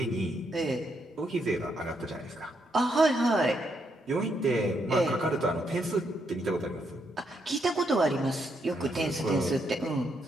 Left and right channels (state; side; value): normal; both; correlation 0.77